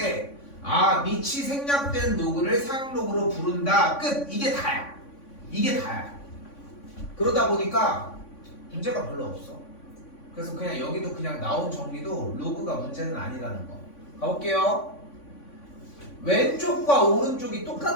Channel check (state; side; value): late; right; 3.5 ms